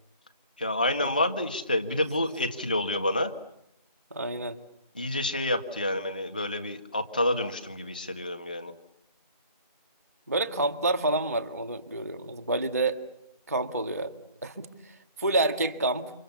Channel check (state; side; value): inverted; both; correlation -0.52